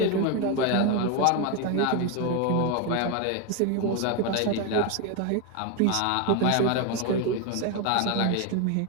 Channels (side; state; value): both; different; correlation 0.02